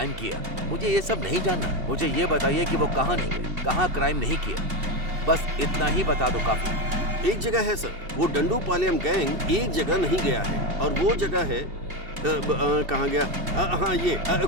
किया, मुझे ये सब नहीं जानना। मुझे ये बताइए कि वो कहां नहीं गए, कहां क्राइम नहीं किया, बस इतना ही बता दो काफी। एक जगह है सर, वो डंडूपालयम गैंग एक जगह नहीं गया है और वो जगह है कहाँ गया? हाँ, ये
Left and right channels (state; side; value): late; left; 2.7 ms